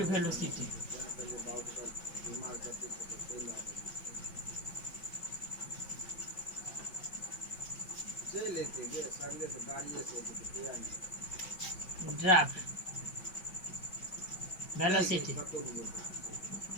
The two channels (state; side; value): late; right; 5.3 ms